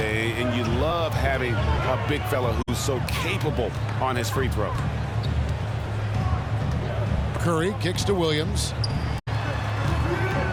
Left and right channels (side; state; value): both; identical; correlation 1.00